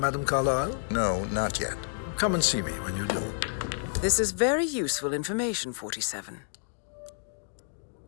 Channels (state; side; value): silent; right; digital silence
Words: Carlyle? No, not yet. Come and see me when you do. This is very useful information, 47.